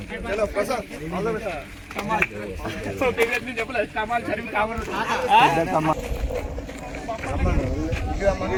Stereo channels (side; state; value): both; identical; correlation 1.00